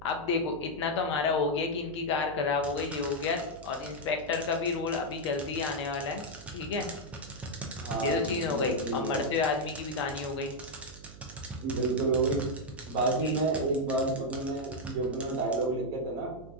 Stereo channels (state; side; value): noise; right; hum, 17 dB below the sound